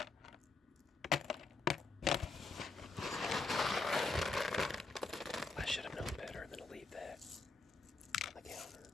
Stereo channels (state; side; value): quieter; right; 3.9 dB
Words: And I should have known better than to leave that on the counter.